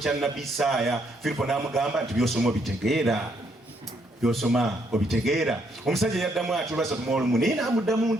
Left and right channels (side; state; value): both; normal; correlation 0.72